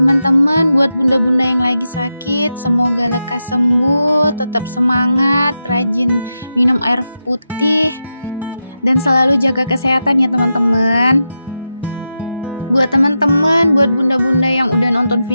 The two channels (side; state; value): both; inverted; correlation -0.89